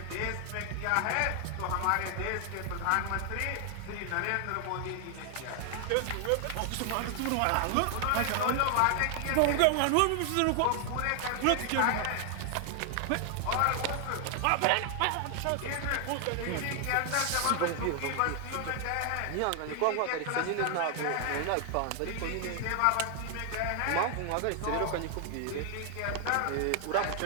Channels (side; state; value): both; different; correlation 0.00